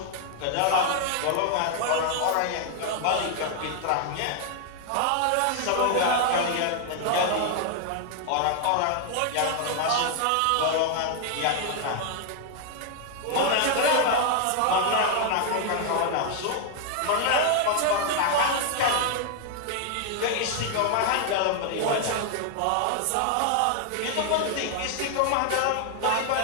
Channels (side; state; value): both; different; correlation 0.00